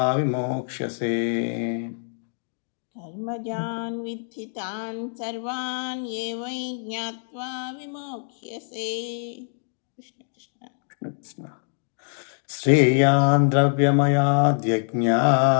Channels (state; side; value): silent; right; digital silence